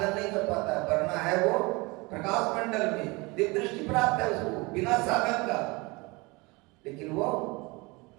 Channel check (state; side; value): quieter; left; 25.4 dB